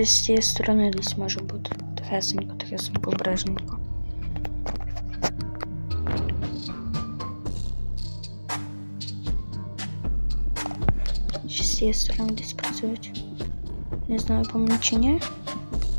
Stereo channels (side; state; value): both; inverted; correlation -1.00